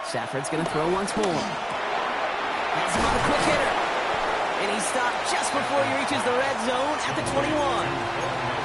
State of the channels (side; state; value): both; identical; correlation 1.00